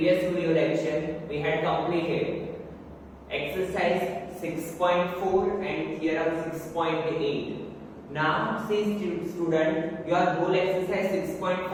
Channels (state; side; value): identical; both; correlation 1.00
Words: video lecture we had completed exercise 6.4 and theorem 6.8. Now see student, your whole exercise